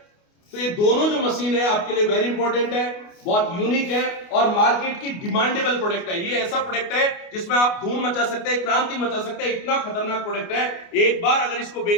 तो ये दोनों जो मशीन है आपके लिए वेरी इंपॉर्टेंट है, बहुत यूनिक है और मार्केट की डिमांडेबल प्रोडक्ट है। ये ऐसा प्रोडक्ट है जिसमें आप धूम मचा सकते हैं, क्रांति मचा सकते हैं। इतना खतरनाक प्रोडक्ट है, एक बार अगर इसको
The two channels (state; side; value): late; right; 29 ms